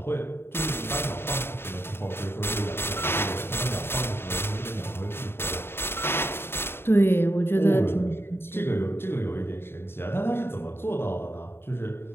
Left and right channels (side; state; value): right; late; 0.11 ms